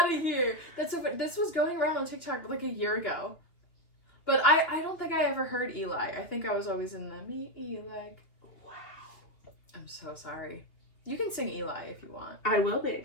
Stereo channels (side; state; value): right; late; 3.0 ms